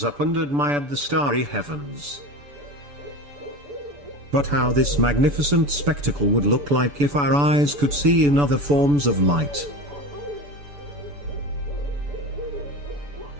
up and admired the starry heavens. But how this magnificent spectacle would look like if our eyes could see in other forms of light,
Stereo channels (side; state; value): left; late; 6.9 ms